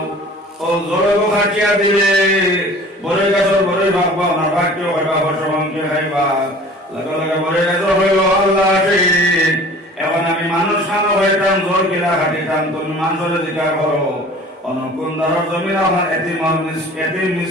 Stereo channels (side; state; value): both; normal; correlation 0.45